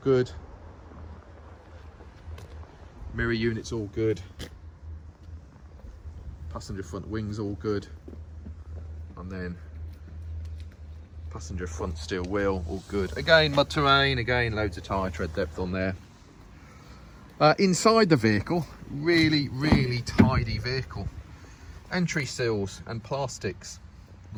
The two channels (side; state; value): both; identical; correlation 1.00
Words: Mirror units all good. Passenger front wings all good. And then passenger front steel wheel all good. Again, mud terrain, again loads of tyre tread depth on there. Inside the vehicle, really tidy vehicle. Entry sills and plastics,